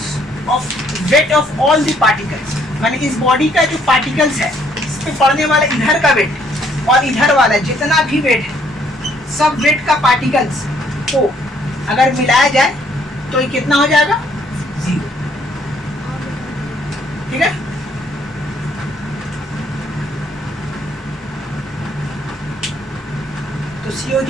of weight of all the particles, माने इस बॉडी का जो पार्टिकल्स है, इस पे पड़ने वाला इधर का वेट और इधर वाला जितना भी वेट है, सब वेट का पार्टिकल्स को अगर मिलाया जाए तो ये कितना हो जाएगा, 0। ठीक है, तो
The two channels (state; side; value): normal; both; correlation 0.66